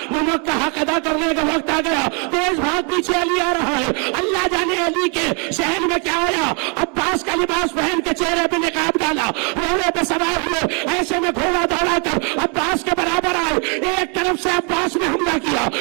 نمک کا حق ادا کرنے کا وقت آ گیا. تیز بھاگ پیچھے علی آ رہا ہے. اللہ جانے علی کے ذہن میں کیا آیا. عباس کا لباس پہن کے چہرے پہ نقاب ڈالا, گھوڑے پہ سوار ہوئے, ایسے میں گھوڑا دوڑا کر عباس کے برابر آئے. ایک طرف سے عباس نے حملہ کیا,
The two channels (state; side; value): quieter; left; 36.0 dB